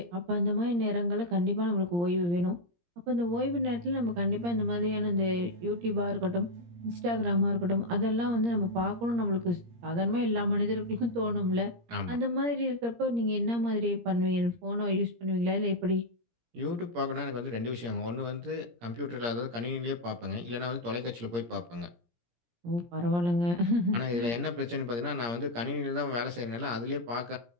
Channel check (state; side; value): late; left; 17 ms